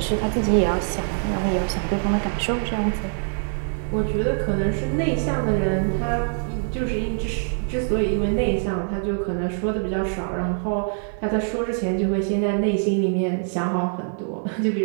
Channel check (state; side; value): silent; left; digital silence